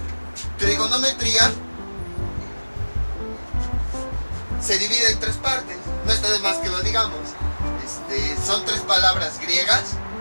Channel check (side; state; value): both; inverted; correlation -1.00